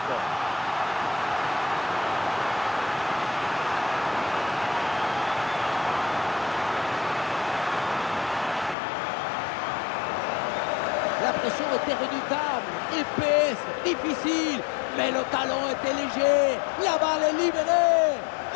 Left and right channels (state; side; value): drops out; right; at 8.8 s